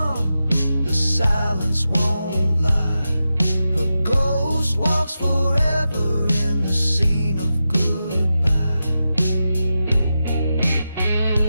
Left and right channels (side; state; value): both; inverted; correlation -0.90